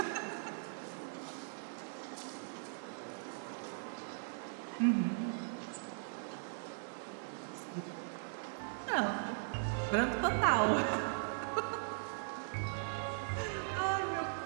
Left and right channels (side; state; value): left; silent; 52 dB below the other